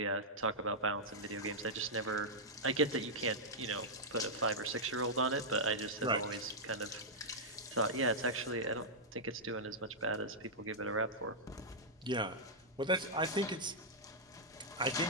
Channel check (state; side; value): normal; both; correlation -0.09